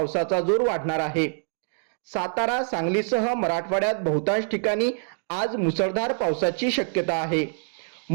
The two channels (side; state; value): left; silent; digital silence